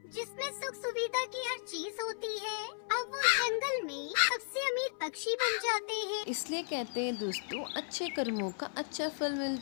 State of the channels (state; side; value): silent; right; 54 dB below the other